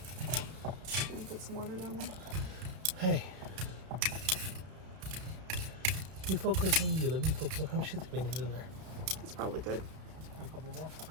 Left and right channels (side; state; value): left; late; 32 ms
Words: Put some water down there. Hey. You focus on you. Let me focus on how much shit we need in there. It's probably good. A couple more.